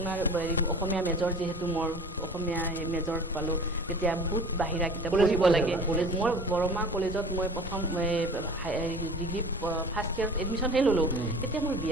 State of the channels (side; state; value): both; normal; correlation 0.42